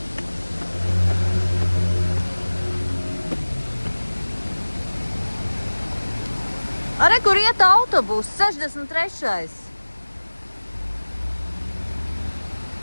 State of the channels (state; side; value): inverted; both; correlation -1.00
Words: Are, kur iet autobus? 63.